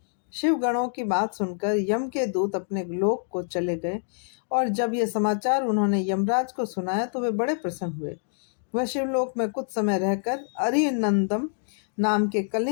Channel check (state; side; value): silent; right; digital silence